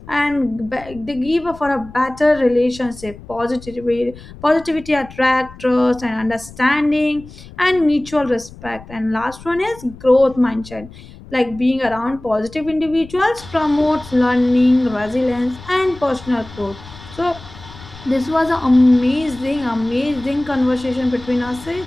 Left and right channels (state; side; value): noise; left; rumble, 18 dB below the sound